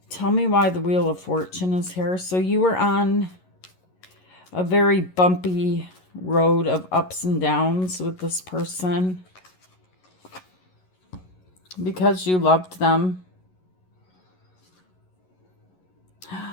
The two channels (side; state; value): right; late; 11 ms